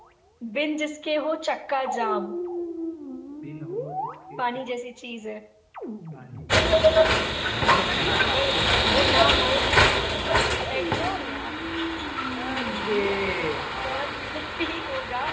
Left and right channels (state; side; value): identical; both; correlation 1.00